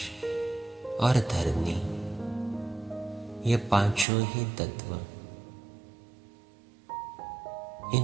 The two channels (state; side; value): drops out; left; at 4.0 s